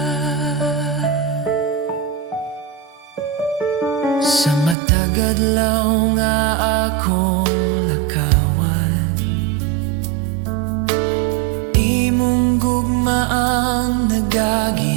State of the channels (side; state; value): left; drops out; at 4.8 s